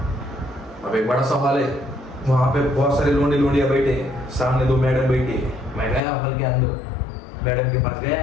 अब एक बड़ा सवाल है, वहां पे बहुत सारे लोंडिया बैठे हैं, सामने 2 मैडम बैठी है। मैं गया हॉल के अंदर, मैडम के पास गया,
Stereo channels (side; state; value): right; drops out; at 6.0 s